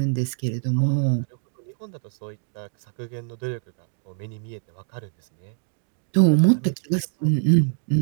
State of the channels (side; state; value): left; silent; 62 dB below the other